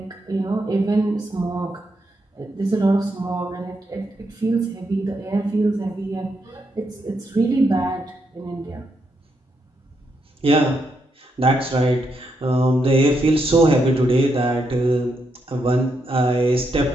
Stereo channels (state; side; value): normal; both; correlation 0.80